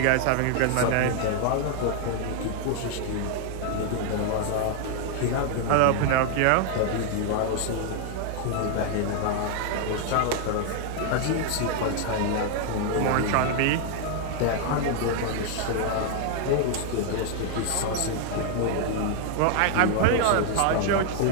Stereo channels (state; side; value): different; both; correlation 0.00